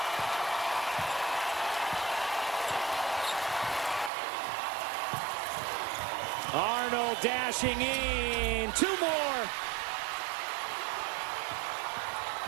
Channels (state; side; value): drops out; left; at 4.1 s